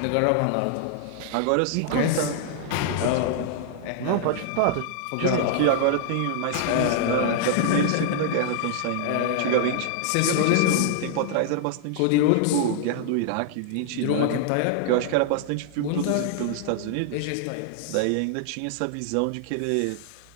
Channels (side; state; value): both; different; correlation -0.01